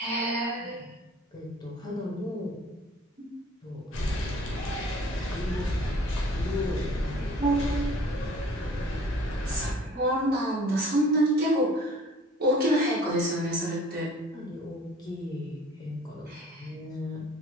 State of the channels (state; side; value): normal; both; correlation 0.51